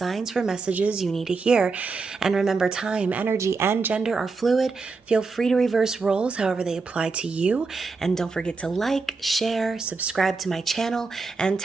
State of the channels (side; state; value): left; quieter; 4.3 dB